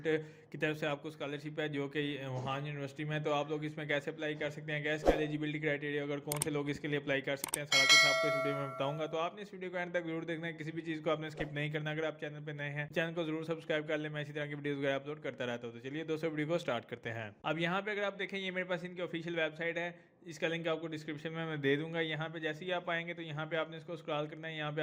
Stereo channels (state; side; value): identical; both; correlation 1.00